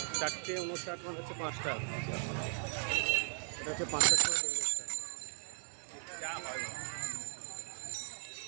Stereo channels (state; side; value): silent; left; 53 dB below the other